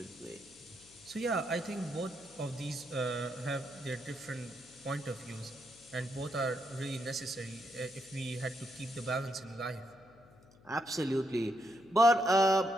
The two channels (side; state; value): left; noise; hum, 25 dB below the sound